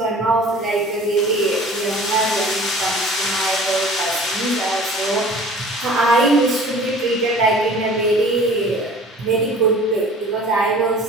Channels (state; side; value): normal; both; correlation 0.46